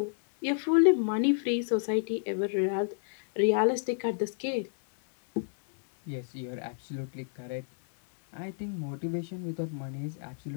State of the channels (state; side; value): silent; right; 58 dB below the other